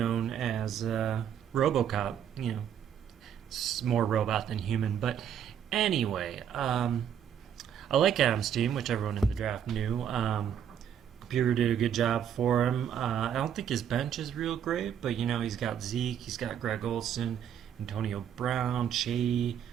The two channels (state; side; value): quieter; left; 8.9 dB